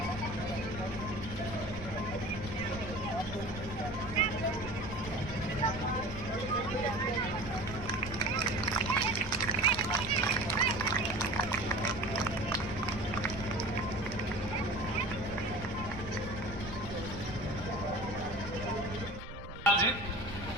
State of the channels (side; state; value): right; noise; rumble, 12 dB below the sound